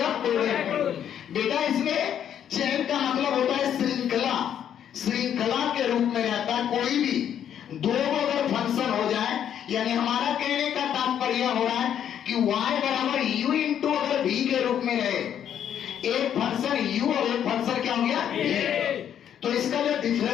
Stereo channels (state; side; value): quieter; right; 9.5 dB